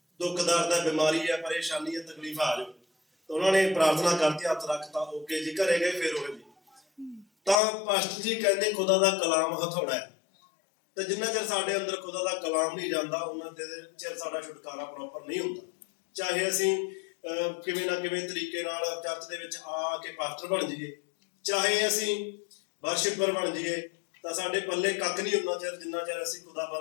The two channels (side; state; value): right; drops out; at 7.6 s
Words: ਦੁੱਖ ਦਰਦ ਹੈ, ਬਿਮਾਰੀ ਹੈ, ਪਰੇਸ਼ਾਨੀ ਹੈ, ਤਕਲੀਫ ਆ ਜਾਓ। ਤਾਂ ਉਹਨਾਂ ਨੇ ਪ੍ਰਾਰਥਨਾ ਕਰਤੀ, ਹੱਥ ਰੱਖਤਾ, ਓਕੇ ਜੀ, ਘਰੇ ਗਏ, ਫਿਰ ਉਹ ਜੀ। ਤਾਂ ਪਾਸਟਰ ਜੀ ਕਹਿੰਦੇ ਖੁਦਾ ਦਾ ਕਲਾਮ ਹਥੌੜਾ ਹੈ। ਤੇ ਜਿੰਨਾ ਚਿਰ ਸਾਡੇ ਅੰਦਰ ਖੁਦਾ ਦਾ ਕਲਾਮ ਨਹੀਂ ਜਾਂਦਾ ਉਹਨਾਂ ਚਿਰ ਸਾਡਾ ਛੁਟਕਾਰਾ ਪ੍ਰੋਪਰ ਨਹੀਂ ਹੁੰਦਾ। ਚਾਹੇ ਅਸੀਂ ਕਿਵੇਂ ਨਾ ਕਿਵੇਂ ਤਰੀਕੇ ਨਾਲ ਚਰਚ ਦੇ ਵਿੱਚ ਆ ਕੇ ਪਾਸਟਰ ਬਣ ਜਾਈਏ, ਚਾਹੇ ਅਸੀਂ ਵਰਸ਼ਿਪਰ ਬਣ ਜਾਈਏ, ਤਾਂ ਸਾਡੇ ਪੱਲੇ ਕੱਖ ਨਹੀਂ ਹੁੰਦਾ ਚਿਰ ਜਿੰਨਾ ਚਿਰ ਅਸੀਂ